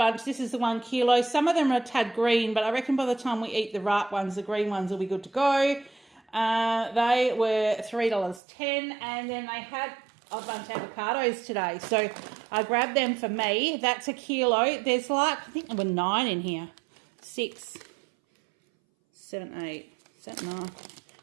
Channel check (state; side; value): drops out; left; at 8.4 s